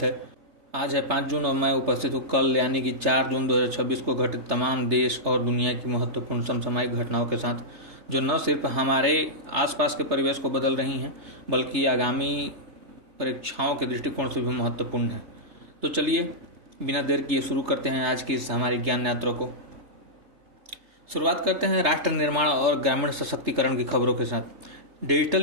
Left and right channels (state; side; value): late; left; 3.3 ms